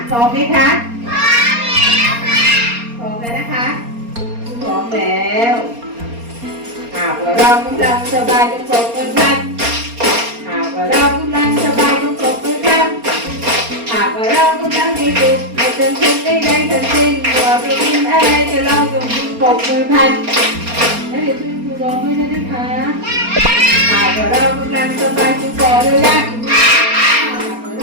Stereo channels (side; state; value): left; late; 4.3 ms